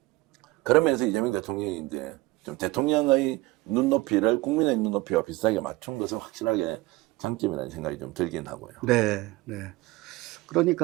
그러면서 이재명 대통령이 이제 좀 대통령의 눈높이를 국민의 눈높이와 비슷하게 맞춘 것은 확실하게 장점이라는 생각이 좀 들긴 하고요. 네, 네.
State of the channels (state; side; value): quieter; left; 20.2 dB